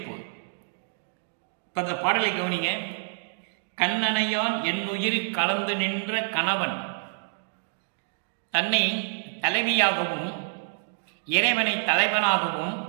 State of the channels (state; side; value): silent; left; digital silence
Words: இப்போ இந்த பாடலை கவனிங்க. கண்ணனையான் என்னுயிர் கலந்து நின்ற கணவன் தன்னை தலைவியாகவும் இறைவனை தலைவனாகவும்